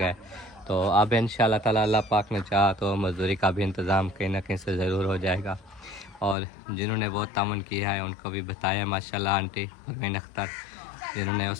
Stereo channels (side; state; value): right; drops out; at 6.4 s